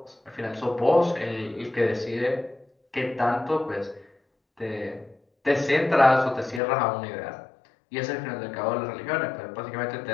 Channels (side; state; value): right; drops out; at 6.6 s